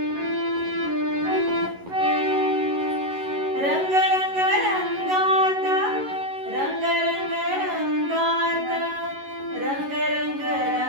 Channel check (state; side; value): late; left; 11 ms